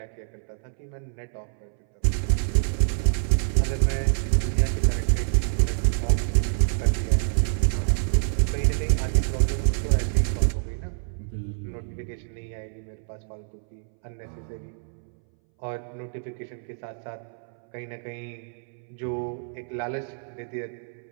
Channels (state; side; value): silent; left; 61 dB below the other